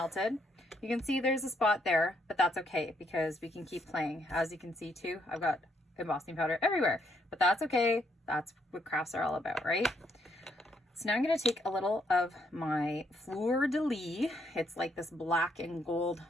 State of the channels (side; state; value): both; normal; correlation 0.73